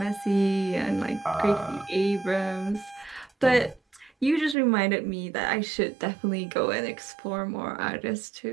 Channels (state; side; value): drops out; left; at 4.5 s